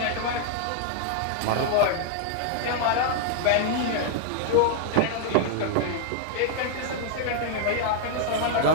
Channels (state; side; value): different; both; correlation 0.00